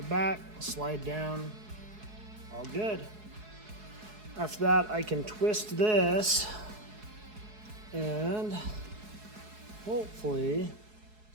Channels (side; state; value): left; late; 4.7 ms